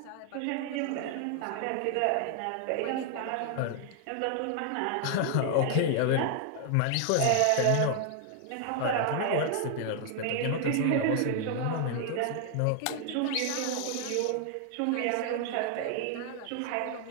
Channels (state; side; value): different; both; correlation 0.00